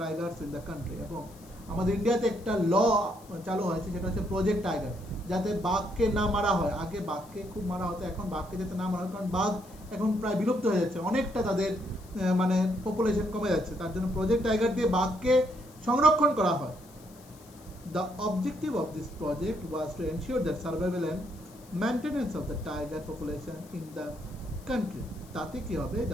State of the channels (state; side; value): noise; left; hiss, 24 dB below the sound